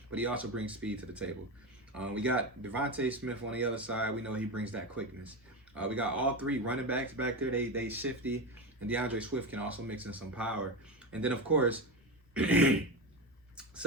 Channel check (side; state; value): both; normal; correlation 0.18